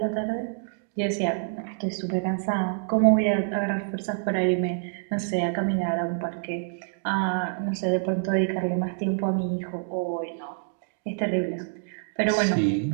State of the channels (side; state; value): left; silent; digital silence